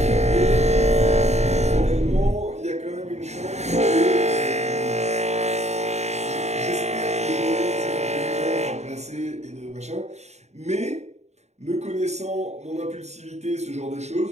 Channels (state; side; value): late; left; 0.32 ms